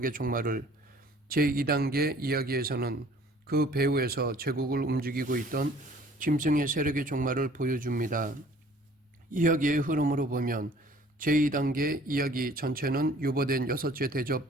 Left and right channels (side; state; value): both; normal; correlation 0.53